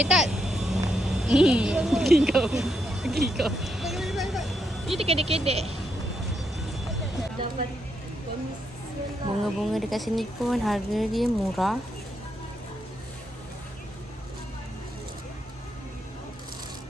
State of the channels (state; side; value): normal; both; correlation 0.79